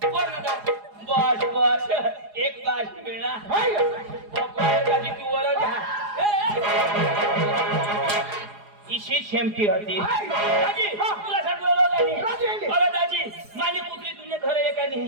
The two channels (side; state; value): left; late; 4.8 ms